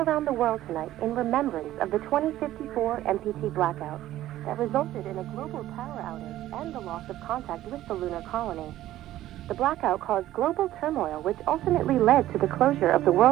the world tonight in remembrance of the 2054 MPT blackout that resulted in a global power outage and the loss of contact with the lunar colony. The blackout caused global turmoil, which ultimately led to the closure of the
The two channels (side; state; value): left; quieter; 14.0 dB